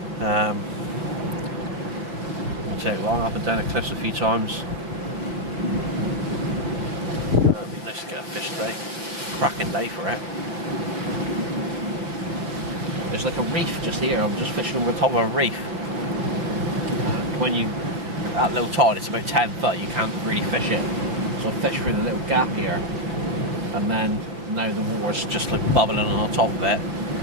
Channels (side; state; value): left; late; 5.9 ms